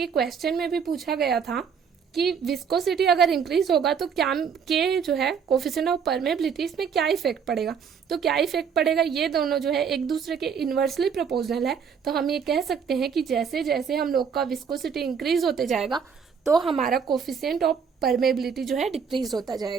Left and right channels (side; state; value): left; quieter; 6.7 dB